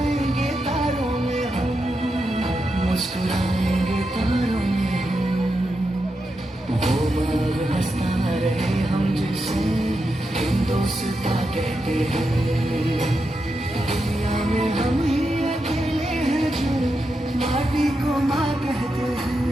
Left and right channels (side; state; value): both; normal; correlation 0.86